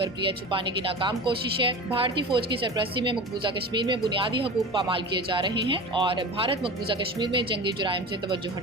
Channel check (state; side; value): normal; both; correlation 0.32